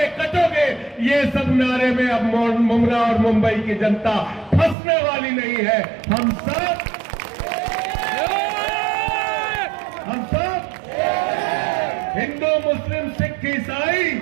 कटोगे, ये सब नारे में अब मुमरा और मुंबई की जनता फंसने वाली नहीं है। हम सब हिंदू मुस्लिम सिख ईसाई,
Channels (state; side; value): drops out; left; at 4.8 s